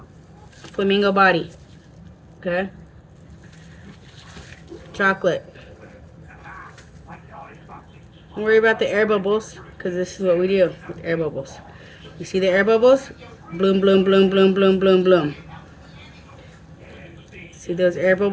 flamingo body. Okay, chocolate. Don't worry about the air bubbles, because this is what we do with air bubbles. You see the air bubbles? Bloom, bloom, bloom, bloom, bloom, bloom, bloom. See those air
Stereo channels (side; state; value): both; identical; correlation 1.00